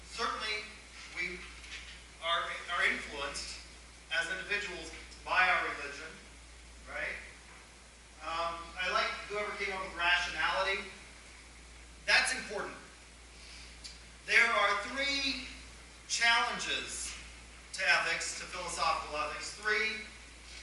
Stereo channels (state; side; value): identical; both; correlation 1.00